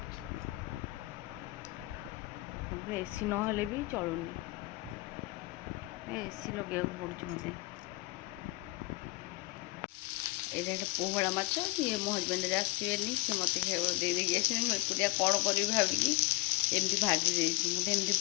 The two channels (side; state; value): right; quieter; 22.3 dB